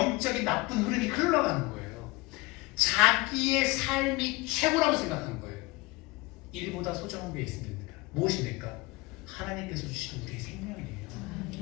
나쁜 흐름이 흘러가는 거예요. 자기의 삶이 최고라고 생각하는 거예요. 일보다 소중한 게 있습니다. 무엇입니까? 하나님께서 주신 우리의 생명이에요.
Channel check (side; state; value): right; quieter; 22.5 dB